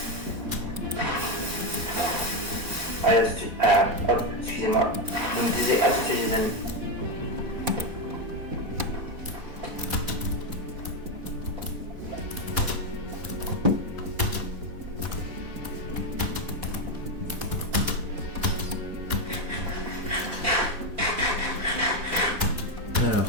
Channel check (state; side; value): late; left; 4.1 ms